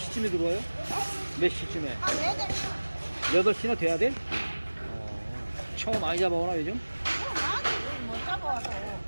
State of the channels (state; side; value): inverted; both; correlation -1.00